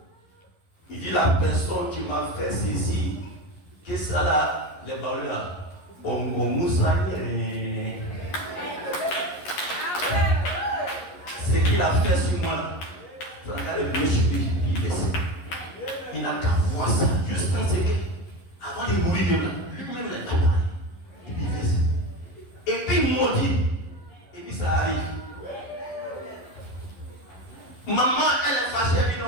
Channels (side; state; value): right; late; 11 ms